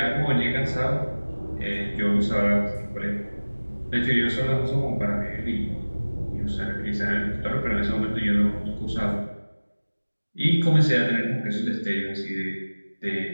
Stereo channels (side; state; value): both; inverted; correlation -1.00